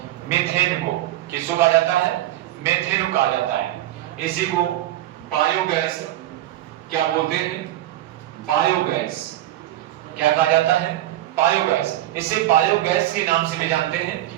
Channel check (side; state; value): left; quieter; 14.4 dB